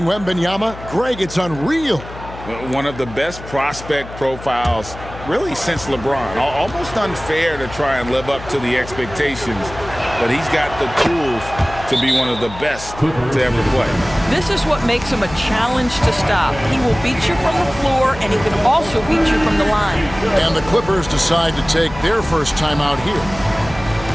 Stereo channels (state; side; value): noise; left; hum, 14 dB below the sound